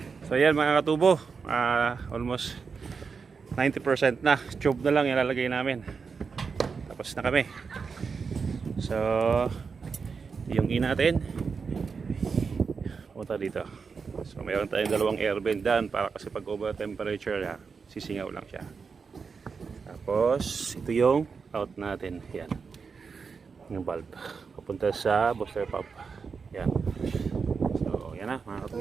So yan mga katubo, almost 90% na. Tube na lang ilalagay namin. Tapos na kami. So yung in natin punta dito. So mayroon tayong dalawang air vent dyan para kasi pag over temperature sisingaw lang siya. Tapos ito yung out natin. Yan, yung valve papunta sa booster pump. Yan. So yan na mga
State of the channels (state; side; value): quieter; left; 5.4 dB